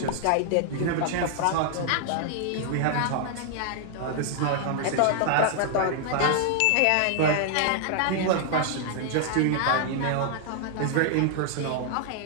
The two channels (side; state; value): both; different; correlation 0.00